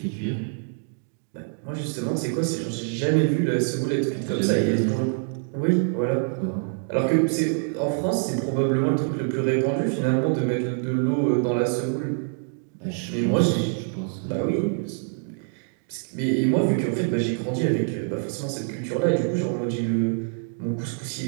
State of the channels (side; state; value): left; silent; 61 dB below the other